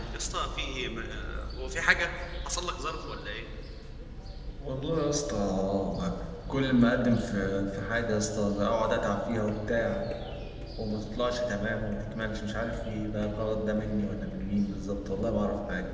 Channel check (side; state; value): both; identical; correlation 1.00